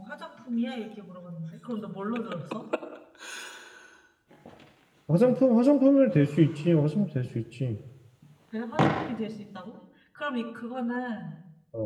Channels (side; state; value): both; identical; correlation 1.00